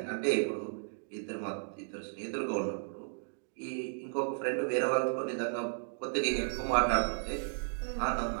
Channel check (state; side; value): silent; left; digital silence